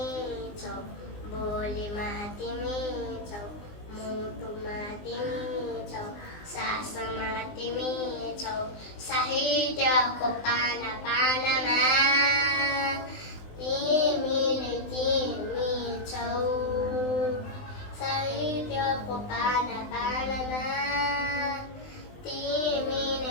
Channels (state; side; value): late; right; 19 ms